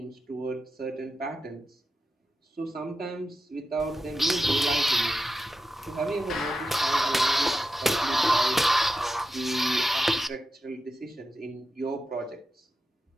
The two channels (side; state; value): both; normal; correlation 0.90